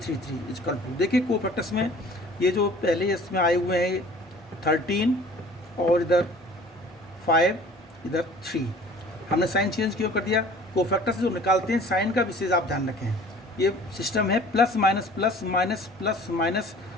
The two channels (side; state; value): both; normal; correlation 0.48